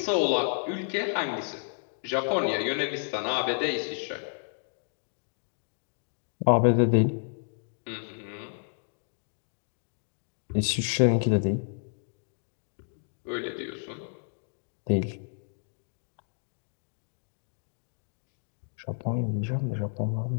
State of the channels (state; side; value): silent; right; digital silence